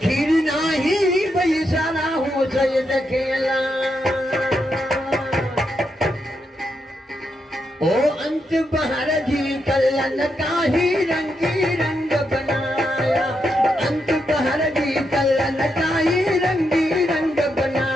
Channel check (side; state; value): both; normal; correlation 0.82